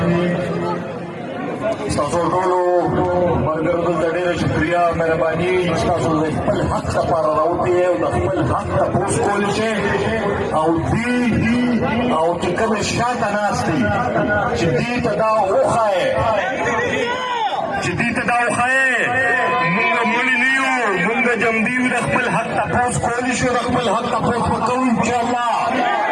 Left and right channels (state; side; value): identical; both; correlation 1.00